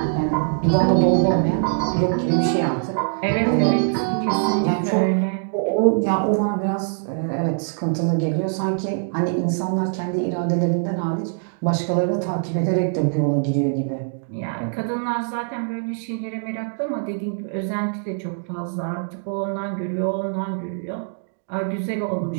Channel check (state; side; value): silent; left; digital silence